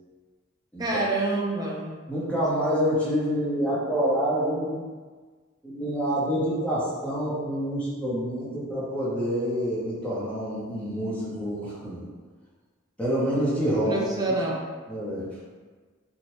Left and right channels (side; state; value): both; normal; correlation 0.33